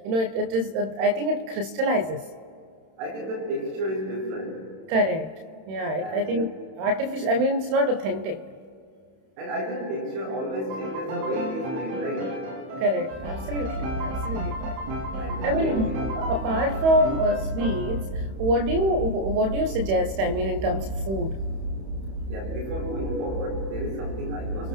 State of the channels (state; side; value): late; left; 31 ms